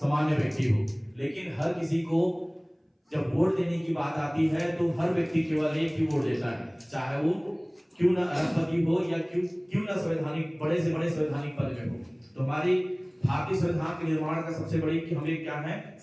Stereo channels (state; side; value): identical; both; correlation 1.00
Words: व्यक्ति हो, लेकिन हर किसी को जब वोट देने की बात आती है तो हर व्यक्ति केवल एक ही वोट देता है, चाहे वो क्यों ना अरबपति हो या क्यों ना संवैधानिक बड़े से बड़े संवैधानिक पद में हो। तो हमारी भारतीय संविधान के निर्माण का सबसे बड़ी कि हमें क्या है,